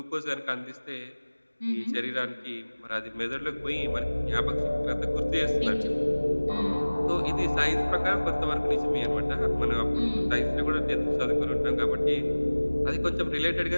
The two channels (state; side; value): inverted; both; correlation -1.00